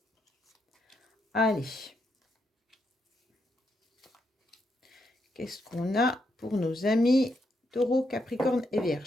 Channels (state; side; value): normal; both; correlation 0.80